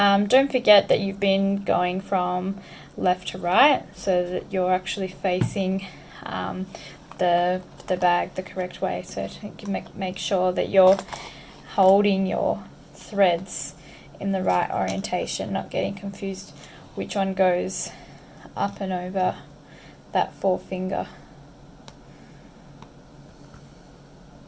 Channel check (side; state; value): both; identical; correlation 1.00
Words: forget that you've been going from left to right, so that you're actually facing the bag the correct way. So to make sure that you're holding your threads in the right orientation, not getting confused which one goes up and over that forefinger.